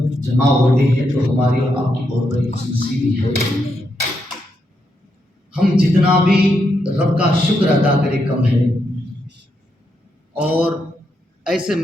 جمع ہوتے ہیں تو ہماری اور آپ کی بہت بڑی خوش نصیبی ہے۔ ہم جتنا بھی رب کا شکر ادا کرے کم ہے، اور ایسے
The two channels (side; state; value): both; normal; correlation 0.81